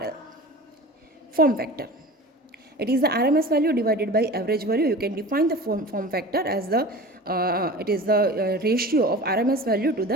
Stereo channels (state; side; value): normal; both; correlation 0.36